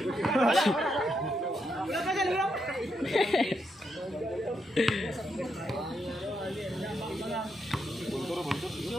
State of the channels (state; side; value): normal; both; correlation 0.81